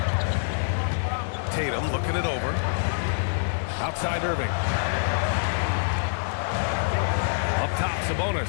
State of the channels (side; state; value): right; silent; digital silence